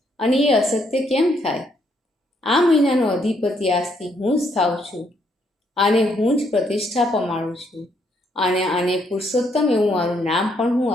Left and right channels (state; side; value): normal; both; correlation 0.72